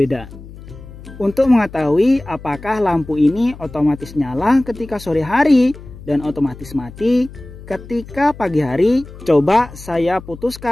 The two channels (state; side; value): noise; left; hum, 16 dB below the sound